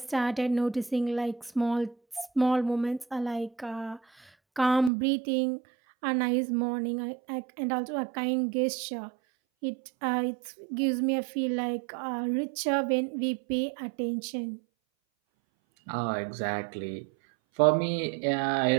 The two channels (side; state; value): left; drops out; at 4.9 s